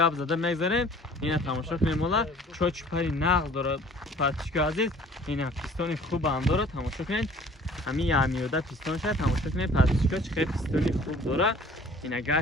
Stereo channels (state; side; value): normal; both; correlation 0.51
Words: зада мегзарем. ина тамошо кунед, мола чочупари нағз дорад Патишко азиз. ина пистони хубам дорад, тамошо кунед. ҳамин ямиёда пистон шад, тамошо кунед Патишко чӣ қадр пистони хуб дорад. ина